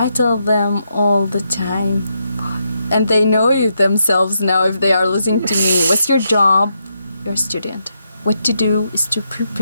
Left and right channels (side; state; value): both; inverted; correlation -0.81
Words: tell them all the time, and they know it themselves now if they are listening to me. What's your job? You're a student. What to do is to